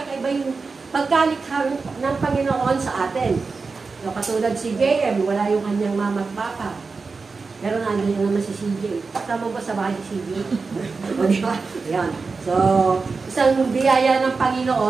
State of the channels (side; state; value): left; quieter; 4.4 dB